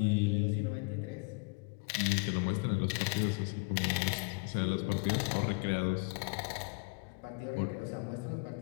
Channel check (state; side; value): quieter; right; 31.3 dB